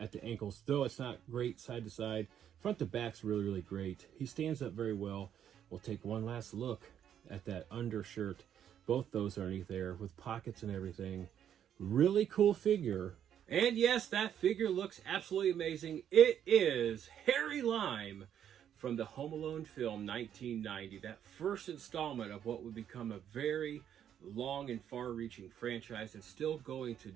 at the ankles, though it's not great side to side. Front to back's really, really great. He stands up very well. We'll take one last look at that undershirt. Both those are underneath there with pockets and everything. Really cool figure. And yes, that figure looks absolutely amazing. It is Harry Lime from the Home Alone film 1990, that first installment of what would become a very long and far-reaching franchise that's still going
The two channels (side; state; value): left; quieter; 9.6 dB